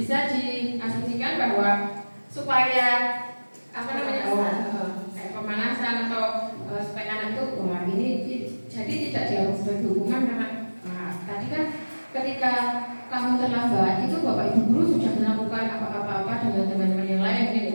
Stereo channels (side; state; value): both; inverted; correlation -1.00